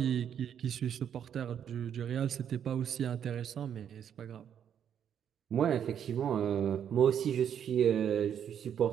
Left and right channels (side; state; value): left; quieter; 8.9 dB